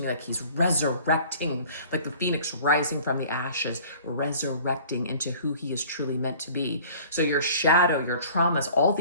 me like he's resurrecting, like the phoenix rising from the ashes, resurrecting into who he is truly meant to be. So your shadow, your traumas, all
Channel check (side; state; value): both; inverted; correlation -0.48